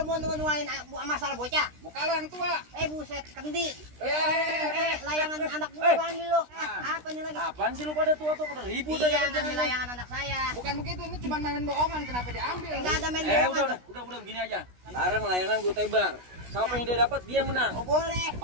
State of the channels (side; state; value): left; late; 16 ms